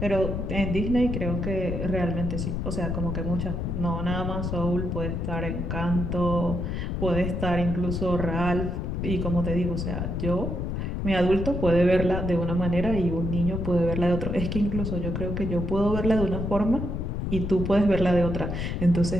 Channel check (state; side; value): noise; left; rumble, 2 dB below the sound